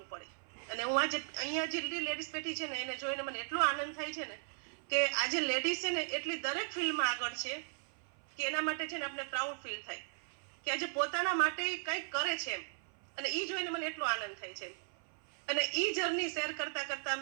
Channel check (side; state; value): left; silent; 53 dB below the other